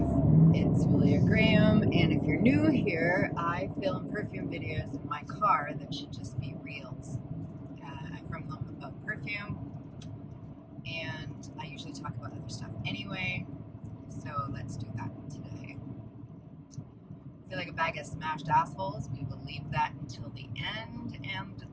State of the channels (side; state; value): both; identical; correlation 1.00